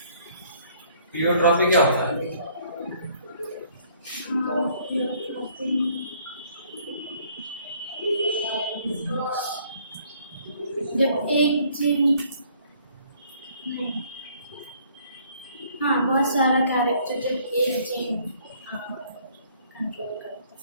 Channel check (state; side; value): inverted; both; correlation -0.61